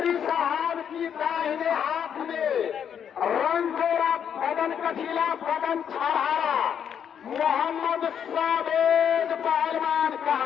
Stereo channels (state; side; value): quieter; right; 8.3 dB